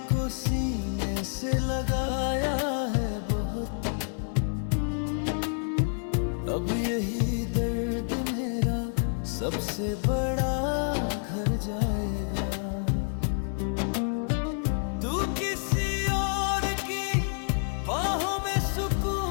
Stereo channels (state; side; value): silent; right; 59 dB below the other